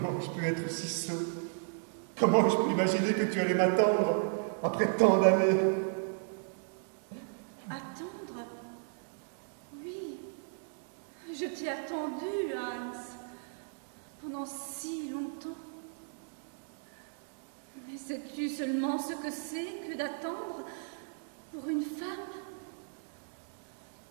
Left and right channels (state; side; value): silent; left; digital silence